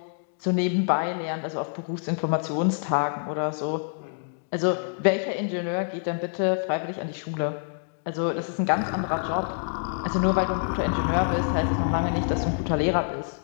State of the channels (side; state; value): right; silent; digital silence